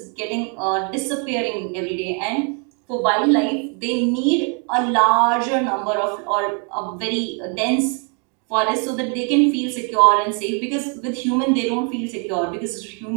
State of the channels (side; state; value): left; quieter; 38.7 dB